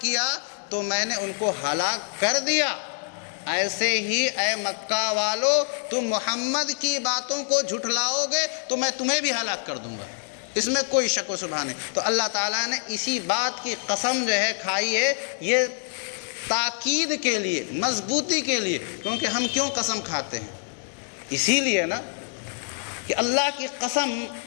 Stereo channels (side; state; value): right; silent; 59 dB below the other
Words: کیا تو میں نے ان کو ہلاک کر دیا، ایسے ہی اے مکہ والو تم محمد کی باتوں کو جھٹلاؤ گے تو میں تمہیں بھی ہلاک کر دوں گا، اس میں کوئی شک و شبہ نہیں۔ تو اللہ تعالیٰ نے اسی بات کی قسم جو ہے کھائی ہے، یہ تاکید کے لیے، مضبوطی کے لیے۔ کیونکہ ہم کیوں قسم کھاتے ہیں؟ اسی لیے نا کہ اللہ کی قسم